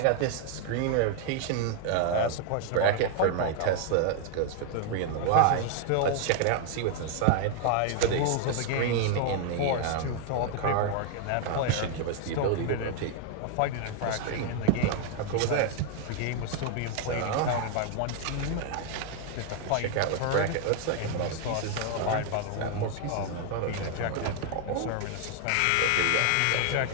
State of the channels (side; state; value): both; different; correlation 0.00